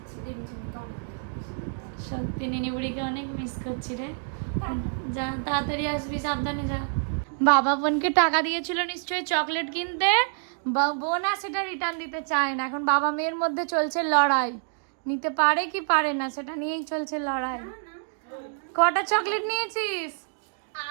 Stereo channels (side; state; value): left; silent; digital silence